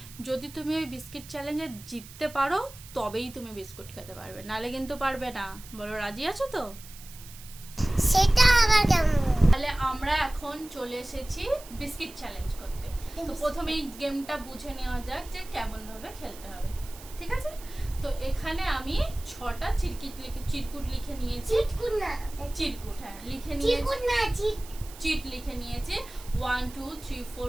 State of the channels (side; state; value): right; noise; hiss, 18 dB below the sound